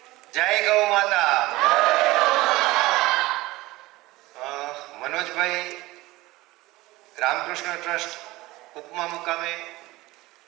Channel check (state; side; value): quieter; left; 19.5 dB